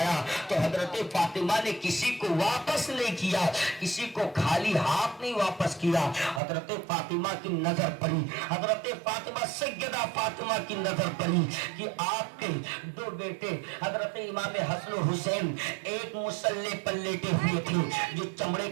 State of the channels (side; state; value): left; drops out; at 6.4 s